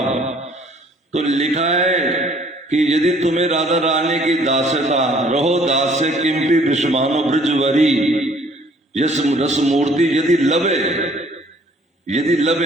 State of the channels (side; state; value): both; normal; correlation 0.58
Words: तो लिखा है कि यदि तुम्हें राधा रानी की दास्यता, रहो दास्य किंपि विषमानो ब्रजवरी, यस रस मूर्ति यदि लबे, यदि